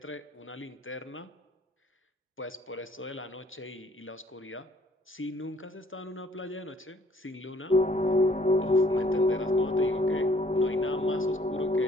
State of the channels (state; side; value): normal; both; correlation 0.60